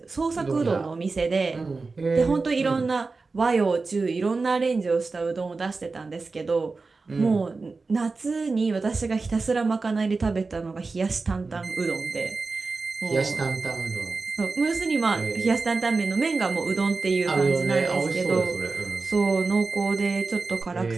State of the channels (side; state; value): left; quieter; 4.0 dB